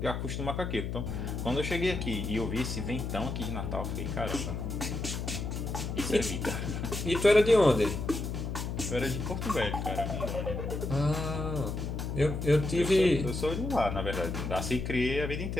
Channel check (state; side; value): noise; left; hum, 4 dB below the sound